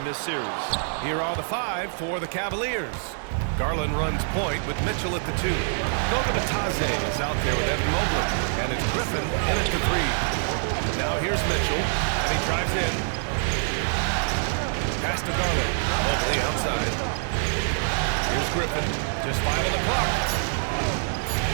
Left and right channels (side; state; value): left; silent; 61 dB below the other